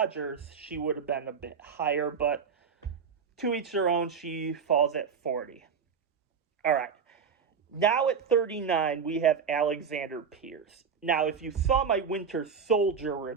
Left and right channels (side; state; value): left; quieter; 6.3 dB